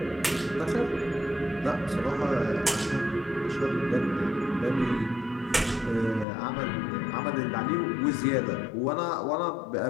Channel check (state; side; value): drops out; right; at 6.2 s